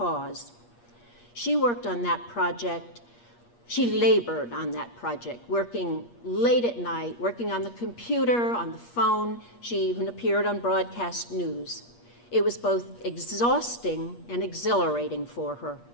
She worked on that project. She labored on that project, working late at night, working on the computer, on the phone. She even appeared on broadcast news. It was both exhausting and exhilarating for her.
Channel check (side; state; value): right; late; 8.4 ms